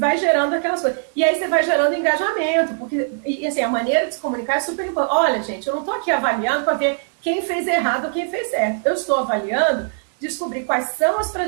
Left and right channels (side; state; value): left; silent; digital silence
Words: gerando aquelas coisas. E aí você vai gerando engajamento, porque, e assim, a maneira de se comunicar é super importante. Olha, gente, eu não estou aqui avaliando para ver quem fez errado ou quem fez certo. Eu estou avaliando descobrir quais são